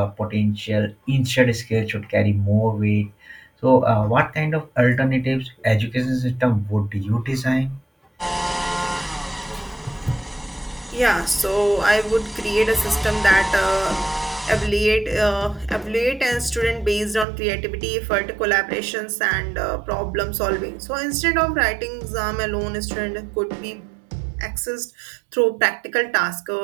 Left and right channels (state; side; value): drops out; left; at 17.2 s